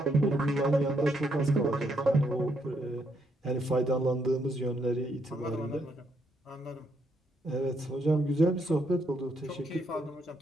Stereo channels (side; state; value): both; normal; correlation 0.75